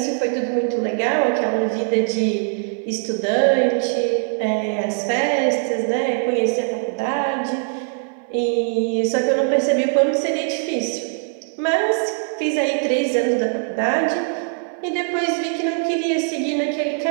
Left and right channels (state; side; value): silent; left; 58 dB below the other